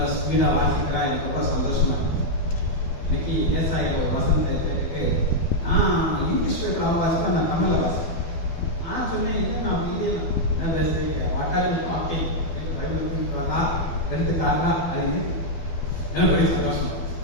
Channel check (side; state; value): right; late; 12 ms